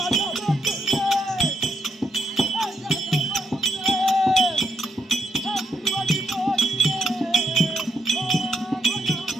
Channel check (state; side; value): normal; both; correlation 0.80